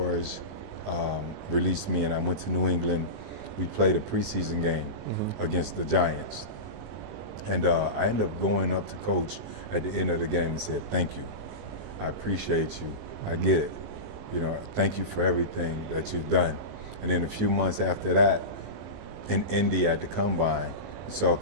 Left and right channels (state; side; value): late; left; 19 ms